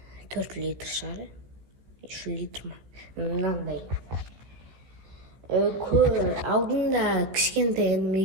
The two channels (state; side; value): late; left; 16 ms